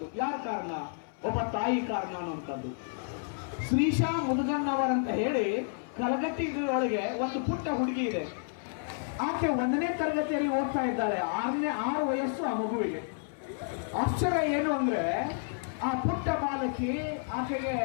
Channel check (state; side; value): silent; right; 57 dB below the other